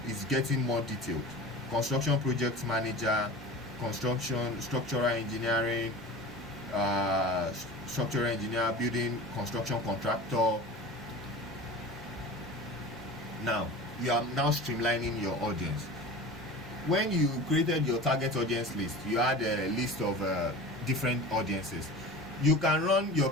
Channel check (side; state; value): both; normal; correlation 0.36